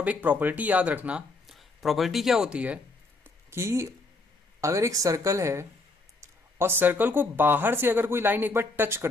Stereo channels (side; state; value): right; quieter; 3.3 dB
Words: एक प्रॉपर्टी याद रखना, प्रॉपर्टी क्या होती है कि अगर एक सर्कल है और सर्कल को बाहर से अगर कोई लाइन एक बार टच